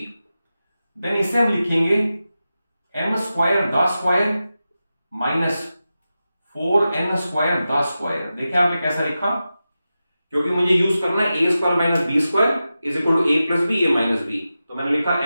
देन इसे हम लिखेंगे m² the square -4n² the square. देखिए आपने कैसा लिखा, क्योंकि मुझे यूज करना है a² - b² = a + b a - b, तो मैंने लिखा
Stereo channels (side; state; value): both; inverted; correlation -0.92